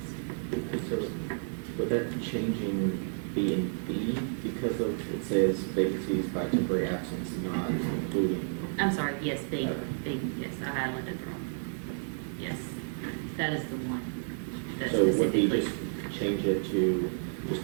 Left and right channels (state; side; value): silent; left; digital silence